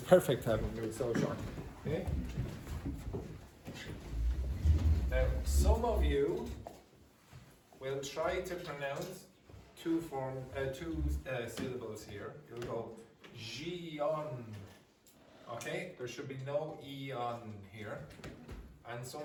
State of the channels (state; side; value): identical; both; correlation 1.00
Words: perfect having me so short. Okay. Now, some of you will try to pronounce two syllables here. You'll go Gion. Okay, there should be no E on here. And